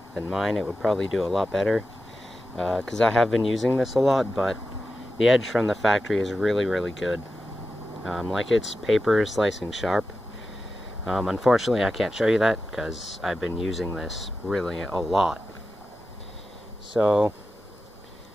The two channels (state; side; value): normal; both; correlation 0.92